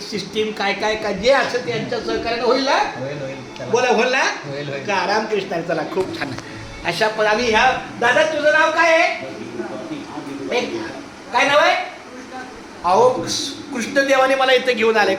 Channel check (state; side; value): identical; both; correlation 1.00